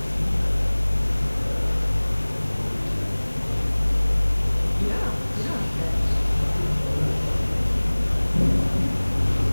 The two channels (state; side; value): inverted; both; correlation -1.00